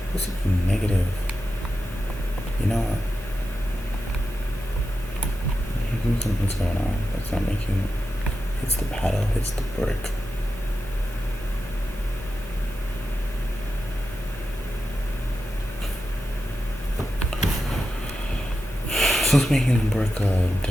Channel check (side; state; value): both; normal; correlation 0.90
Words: This is negative. You know what? Something's going on. That's not making. Hits the paddle, hits the brick. So it's making the brick a